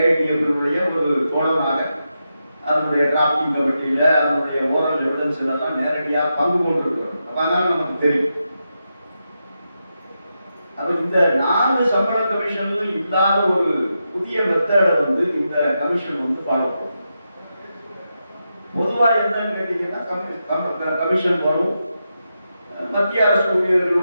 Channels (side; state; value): both; inverted; correlation -0.87